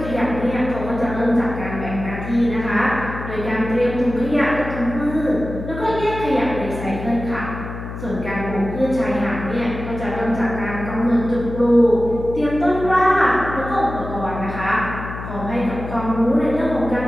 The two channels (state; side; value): noise; left; hum, 9 dB below the sound